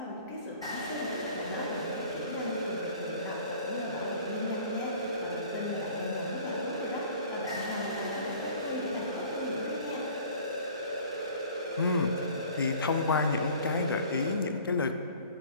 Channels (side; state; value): both; inverted; correlation -0.49